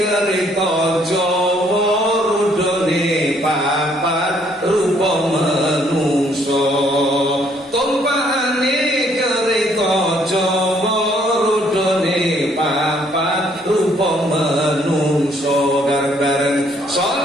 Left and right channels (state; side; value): normal; both; correlation 0.66